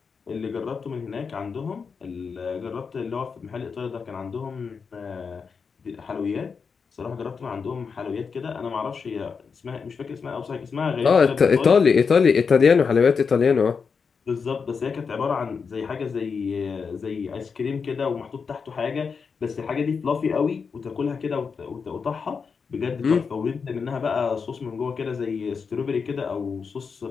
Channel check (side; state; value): right; quieter; 5.6 dB